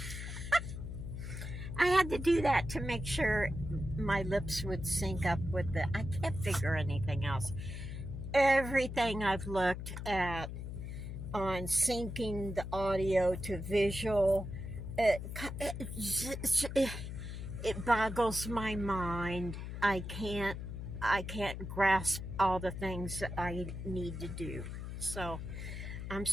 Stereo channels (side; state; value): left; noise; hum, 7 dB below the sound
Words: I had to do that to make sure my lips would sync up with I can't figure anything else. Everything I've looked at on syncing the audio to visual, it, it, it boggles my mind. I can't grasp all the things that I need to do. So I'm